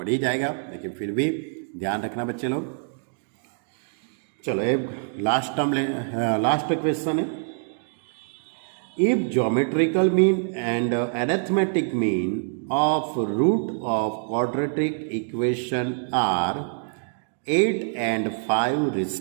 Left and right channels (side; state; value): left; silent; digital silence